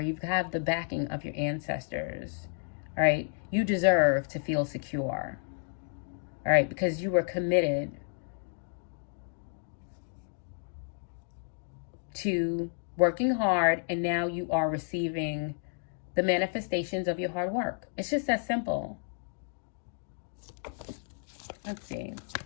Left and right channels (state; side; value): silent; right; 57 dB below the other